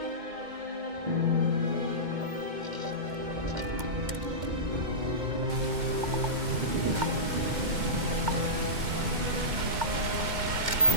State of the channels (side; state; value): left; late; 2.1 ms